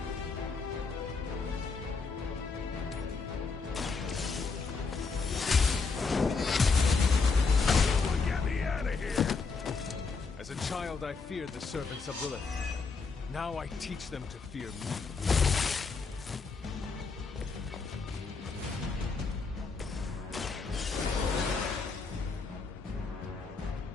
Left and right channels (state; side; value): quieter; right; 4.6 dB